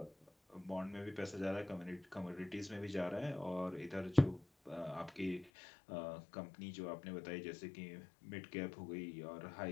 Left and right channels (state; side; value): drops out; right; at 5.5 s